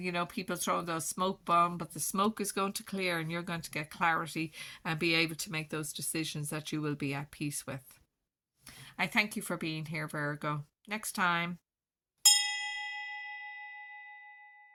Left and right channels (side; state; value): both; identical; correlation 1.00